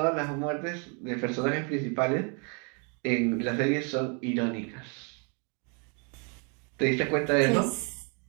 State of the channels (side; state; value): left; quieter; 36.4 dB